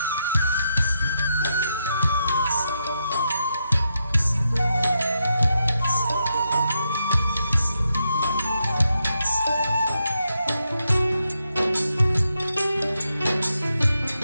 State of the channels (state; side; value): inverted; both; correlation -0.83